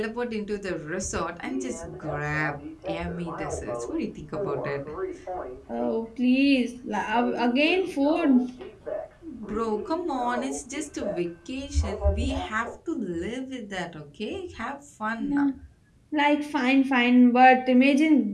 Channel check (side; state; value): both; identical; correlation 1.00